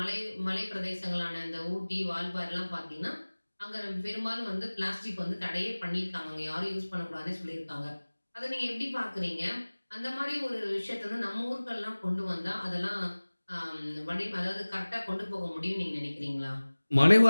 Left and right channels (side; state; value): both; inverted; correlation -1.00